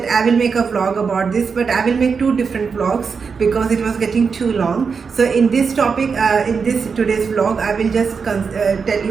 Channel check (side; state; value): left; quieter; 5.5 dB